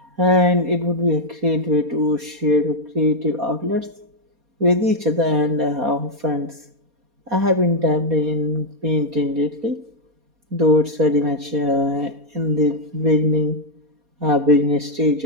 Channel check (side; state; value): left; late; 4.2 ms